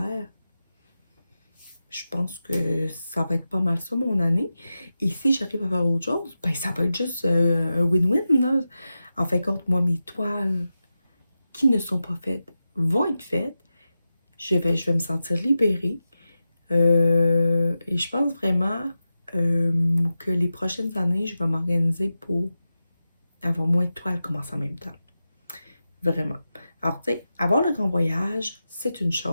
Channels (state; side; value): inverted; both; correlation -0.92